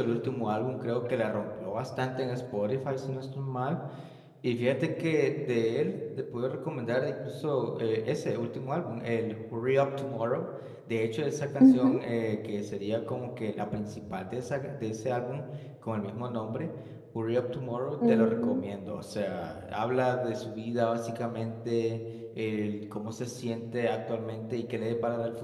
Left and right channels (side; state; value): both; identical; correlation 1.00